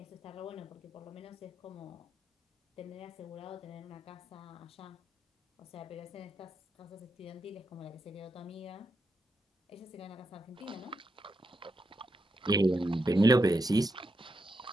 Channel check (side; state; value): both; normal; correlation 0.84